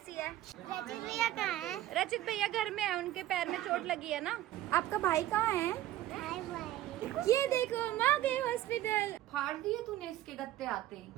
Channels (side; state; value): left; quieter; 14.0 dB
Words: है? रचित भैया कहाँ है? रचित भैया घर में है, उनके पैर में चोट लगी है ना। आपका भाई कहाँ है? हाय भाई। ये देखो हम आ गए हॉस्पिटल। फाड़ दिए तूने इसके गत्ते आते